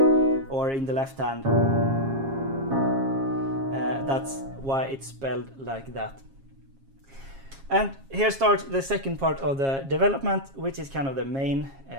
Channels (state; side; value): late; left; 7.4 ms